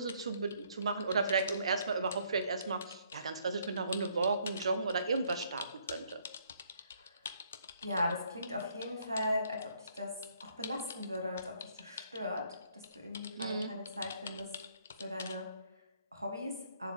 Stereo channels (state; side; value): inverted; both; correlation -0.67